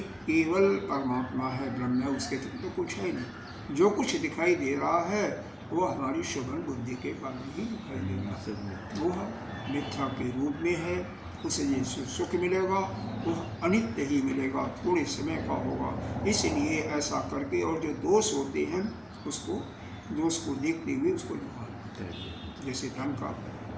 केवल परमात्मा है, ब्रह्म है, उसके तो कुछ है नहीं। जो कुछ दिखाई दे रहा है वो हमारी शोभन बुद्धि के कारण ही दिखाई दे रहा है। वो मिथ्या के रूप में है, उसे ये सुख मिलेगा वो अनित्य ही मिलेगा, थोड़े समय का होगा। इसलिए ऐसा करके, और जो दोष होते हैं उसको, दोष को देखते हुए उसको निकालना। जैसे धन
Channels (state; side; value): identical; both; correlation 1.00